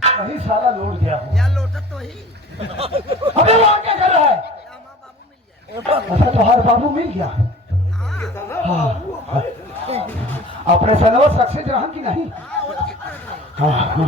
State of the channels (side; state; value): both; normal; correlation 0.43